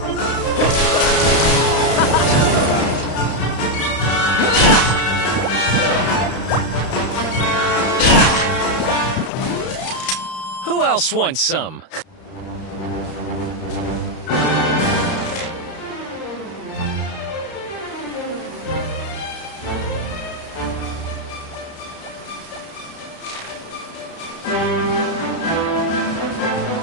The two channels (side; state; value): right; late; 32 ms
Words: Who else wants some?